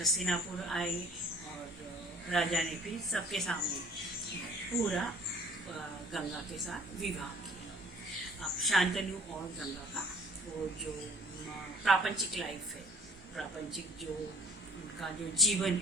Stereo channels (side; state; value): both; normal; correlation 0.54